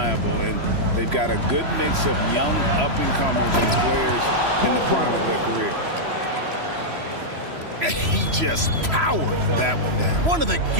and they've got a good mix of young up-and-comers and players in the prime of their career. And he just powered that one down. One of the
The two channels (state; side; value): late; left; 3.0 ms